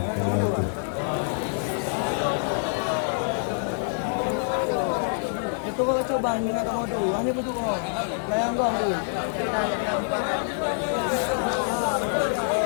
Itu kau coba dengan kamu tu. Hanya betul kau. Layang kau tu.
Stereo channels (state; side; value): silent; right; digital silence